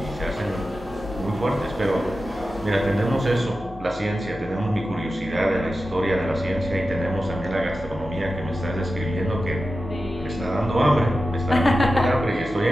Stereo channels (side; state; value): both; normal; correlation 0.92